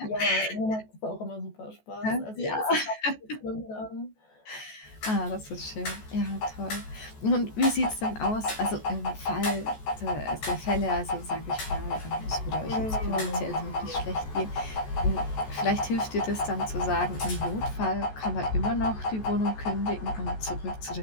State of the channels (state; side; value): late; right; 14 ms